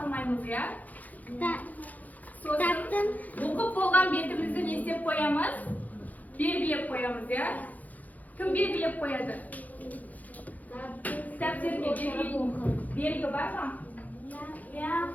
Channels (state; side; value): late; right; 0.079 ms